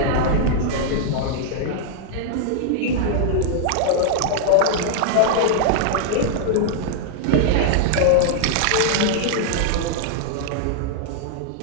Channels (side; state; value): both; different; correlation -0.01